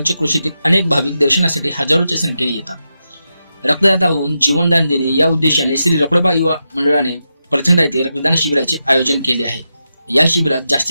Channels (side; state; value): both; inverted; correlation -0.88